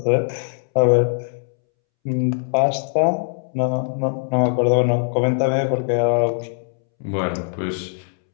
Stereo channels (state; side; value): silent; right; 65 dB below the other